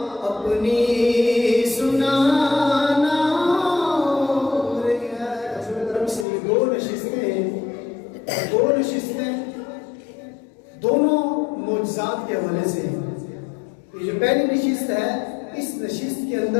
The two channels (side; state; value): right; drops out; at 6.2 s